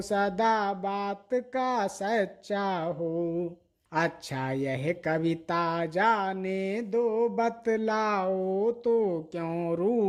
सदा बात का सच्चा हो। अच्छा यह कविता जाने दो बतलाओ तो क्यों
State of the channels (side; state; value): both; identical; correlation 1.00